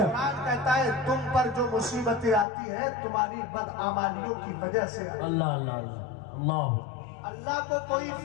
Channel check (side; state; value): right; drops out; at 2.5 s